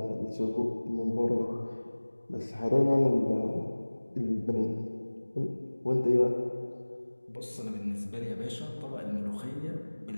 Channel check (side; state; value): both; inverted; correlation -1.00